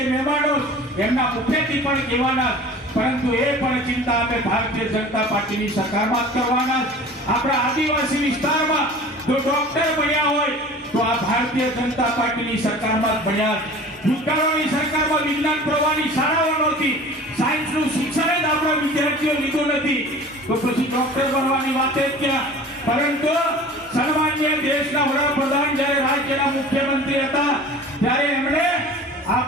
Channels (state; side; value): normal; both; correlation 0.42